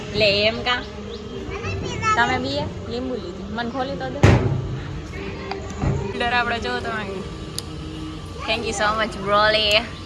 લે એમ કા તમે બી લીંબુ લીધું મને ખોલી તો દે ડર આપણે જો તમે thank you so much Broly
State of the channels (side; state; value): both; identical; correlation 1.00